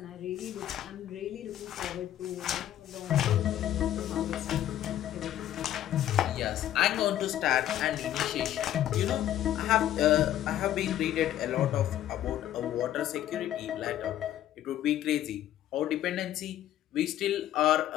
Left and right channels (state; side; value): quieter; right; 12.2 dB